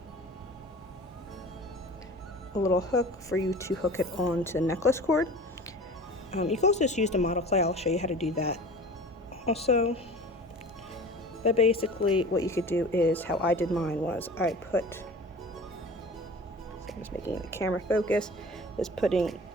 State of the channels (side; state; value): both; normal; correlation 0.39